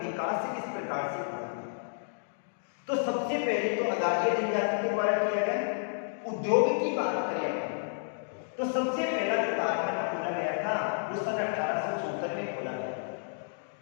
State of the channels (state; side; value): silent; right; digital silence